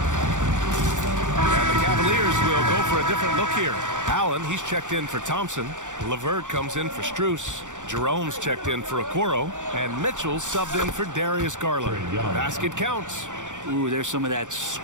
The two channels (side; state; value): left; late; 0.86 ms